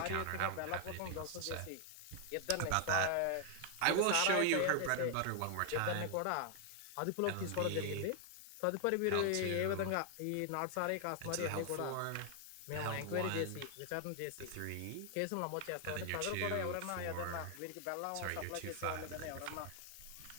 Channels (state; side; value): different; both; correlation 0.00